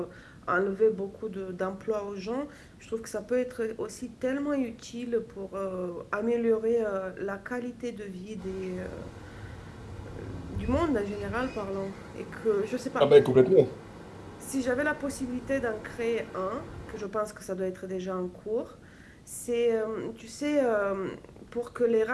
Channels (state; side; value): identical; both; correlation 1.00